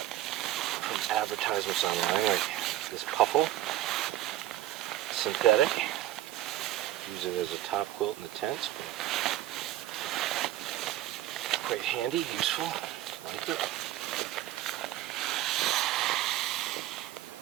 from advertisements online, like this puffle, synthetic. Use it as a top quilt in the tents, but quite handy, useful, like it.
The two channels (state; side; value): quieter; left; 14.0 dB